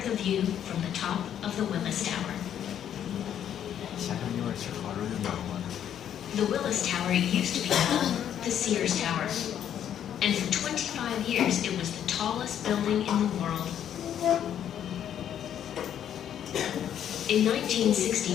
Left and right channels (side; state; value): right; quieter; 9.8 dB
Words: the view from the top of the Willis Tower. The Willis Tower used to be called the Sears Tower. And for 25 years, it was the tallest building in the world. In